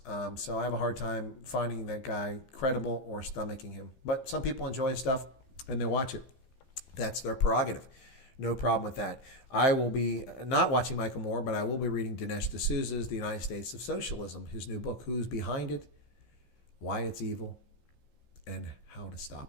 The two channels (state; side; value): late; right; 15 ms